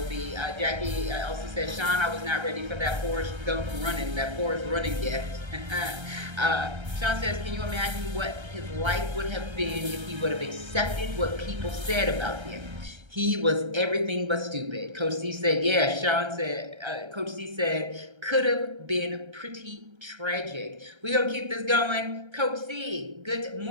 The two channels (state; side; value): late; left; 1.3 ms